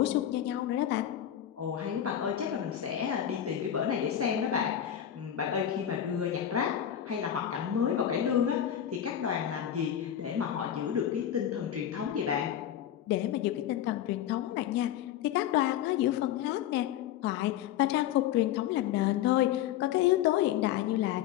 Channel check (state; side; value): quieter; right; 10.6 dB